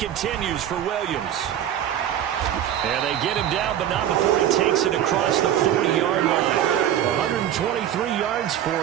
for Williams. And they get him down, but not before he takes it across the 40-yard line. 123 yards for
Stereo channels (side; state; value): left; quieter; 10.8 dB